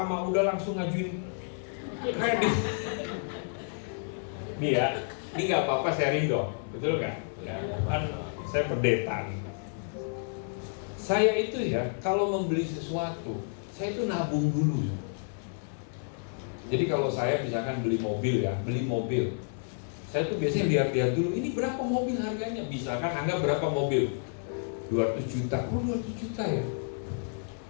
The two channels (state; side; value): silent; right; 57 dB below the other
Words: udah langsung ngajuin kredit. Nih ya, ini nggak apa-apa sharing dong, betul nggak? Ya, kan saya pendeta. Saya itu ya, kalau membeli sesuatu, saya itu nabung dulu. Jadi kalau saya misalkan beli mobil ya, saya tuh biasanya lihat-lihat dulu, ini berapa mobil harganya? Misalkan anggap berapa mobil? 200 juta, oh 200 juta ya.